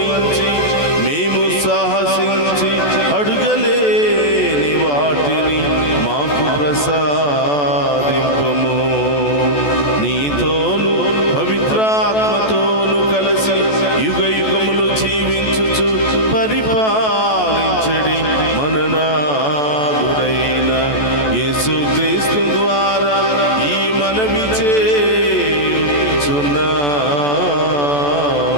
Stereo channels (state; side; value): late; right; 14 ms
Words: మేము సాహసించి అడుగలేని వాటిని మాకు ప్రసాదింపము. నీతోను పవిత్రాత్మతోను కలిసి యుగ యుగములు జీవించుచు పరిపాలించడి మననాథుడైన యేసుక్రీస్తు ద్వారా ఈ మనవి చేయుచున్నాము.